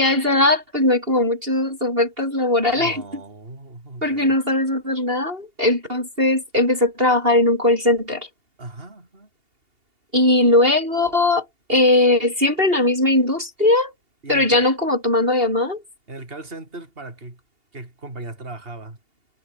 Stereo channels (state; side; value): late; left; 2.8 ms